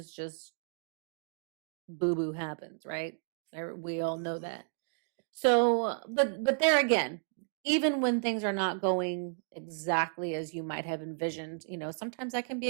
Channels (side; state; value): left; silent; digital silence